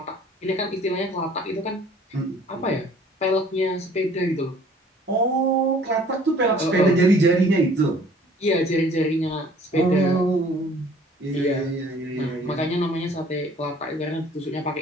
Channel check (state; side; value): normal; both; correlation 0.54